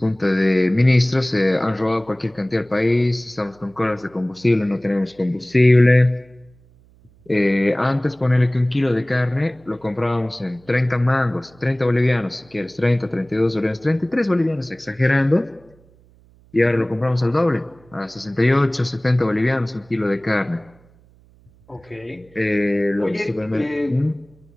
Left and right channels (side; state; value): right; noise; hum, 29 dB below the sound